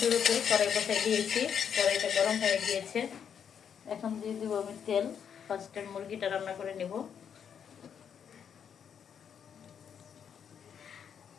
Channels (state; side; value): quieter; right; 7.8 dB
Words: কড়াই বসাই দিয়েছি, কড়াইটা গরম হয়ে গিয়েছে। এখন দিয়ে দিব আমি তেল। ফার্স্ট টাইম মুরগিটা রান্না করে নেব।